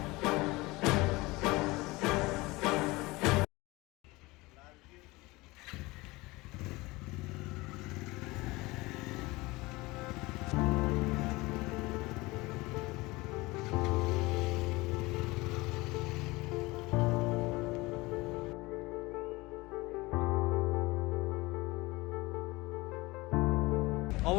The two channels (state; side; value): quieter; right; 22.1 dB